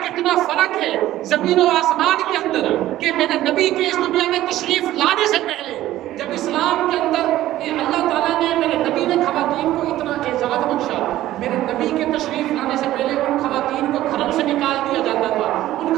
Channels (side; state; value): left; quieter; 14.4 dB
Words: کتنا فرق ہے زمین و آسمان کے اندر. کہ میرے نبی کے اس دنیا میں تشریف لانے سے پہلے جب اسلام کے اندر اللہ تعالیٰ نے میرے نبی نے خواتین کو اتنا اعزاز بخشا, میرے نبی کے تشریف لانے سے پہلے ان خواتین کو گھروں سے نکال دیا جاتا تھا, ان